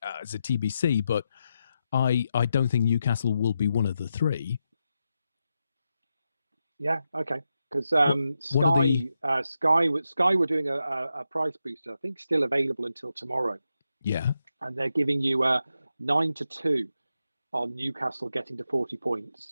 is a TBC, but I don't think Newcastle will be one of the three. Yeah, okay. Because Sky were doing a price booster, I think still available until tomorrow. Yeah. And they're giving you 9-2 on Newcastle getting to 40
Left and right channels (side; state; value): both; inverted; correlation -0.87